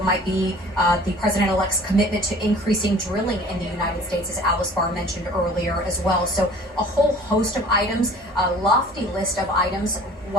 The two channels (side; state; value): both; normal; correlation 0.48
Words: might be the president-elect's commitment to increasing drilling in the United States, as Alice Barr mentioned earlier as well. So a whole host of items, a lofty list of items,